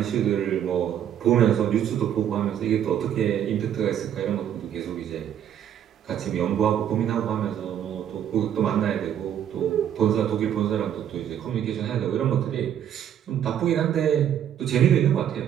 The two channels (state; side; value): quieter; left; 9.9 dB